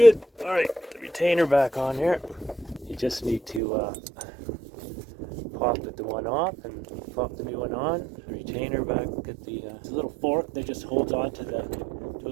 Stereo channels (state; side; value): drops out; left; at 3.6 s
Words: All right, the retainer back on here. You just need to pop the one off and pop the new one on. The retainer back at the little fork that just holds on to a